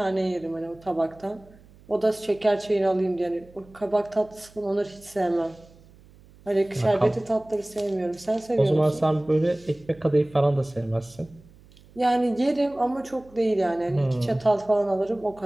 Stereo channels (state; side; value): noise; right; hum, 25 dB below the sound